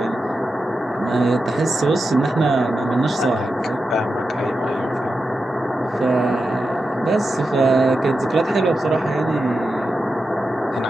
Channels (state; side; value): normal; both; correlation 0.90